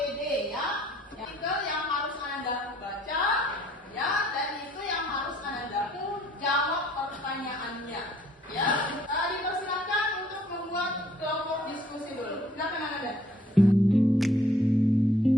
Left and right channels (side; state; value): both; normal; correlation 0.61